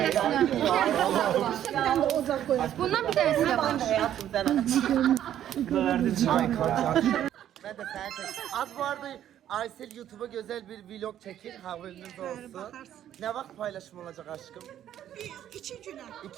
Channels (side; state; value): left; quieter; 11.1 dB